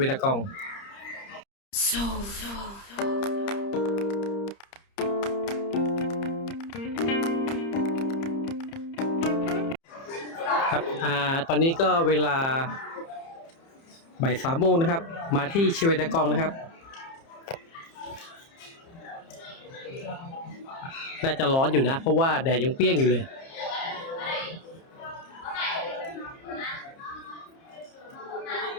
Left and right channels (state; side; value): late; right; 30 ms